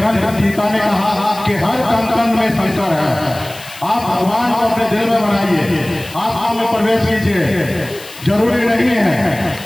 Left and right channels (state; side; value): noise; left; hiss, 17 dB below the sound